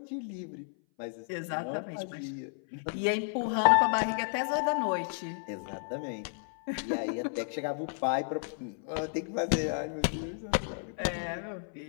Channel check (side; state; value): right; silent; 56 dB below the other